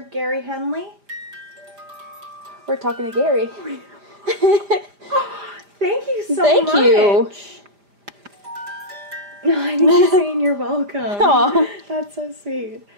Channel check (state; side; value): late; left; 5.0 ms